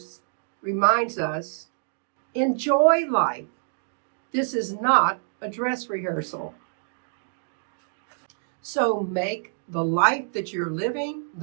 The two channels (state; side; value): silent; left; digital silence